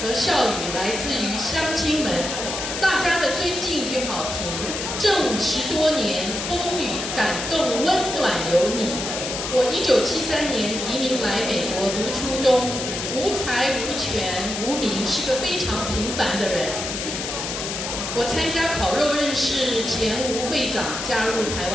和笑语来自于乡亲们，大家的尊敬与好评。这50多年风雨感动温暖有你。我1973年移民来美国读初中，无才无权无名，是个非常平凡的人。我参加烤肉认识前吴会长，加入台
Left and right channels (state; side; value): noise; left; hiss, 5 dB below the sound